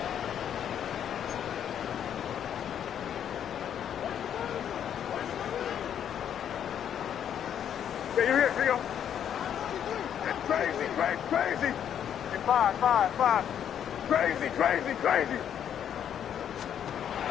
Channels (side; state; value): right; quieter; 9.3 dB